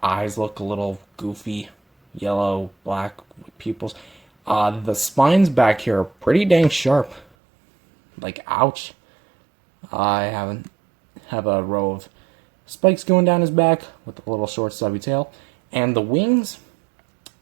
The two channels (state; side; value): drops out; left; at 7.2 s